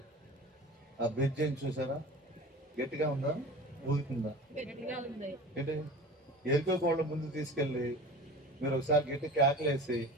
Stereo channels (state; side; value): normal; both; correlation 0.36